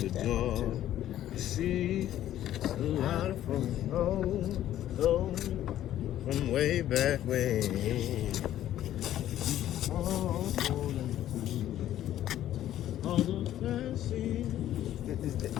door, you see a lot from home, from way back when. All those fancy.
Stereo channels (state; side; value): quieter; right; 12.4 dB